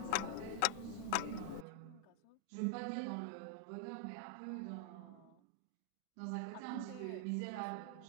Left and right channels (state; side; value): different; both; correlation 0.00